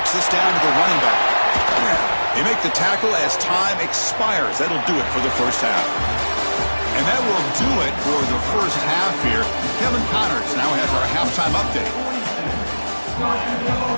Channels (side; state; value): both; inverted; correlation -1.00